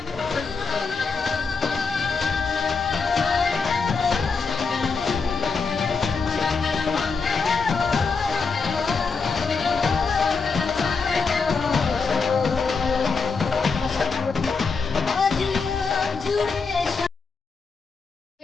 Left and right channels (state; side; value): quieter; right; 4.9 dB